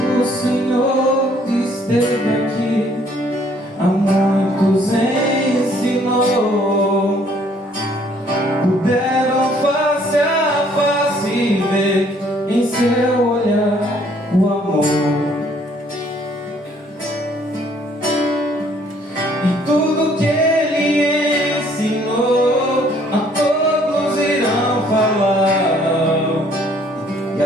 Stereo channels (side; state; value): both; normal; correlation 0.62